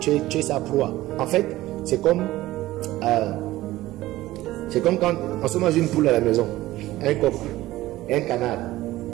es sa proie. En fait, c'est comme quand on se mange une poule à la maison, un coq, un canard.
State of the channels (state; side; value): quieter; left; 16.5 dB